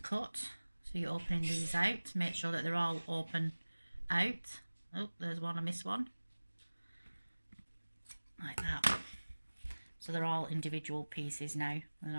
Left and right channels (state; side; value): inverted; both; correlation -1.00